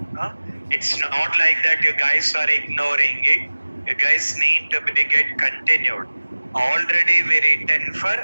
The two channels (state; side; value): inverted; both; correlation -1.00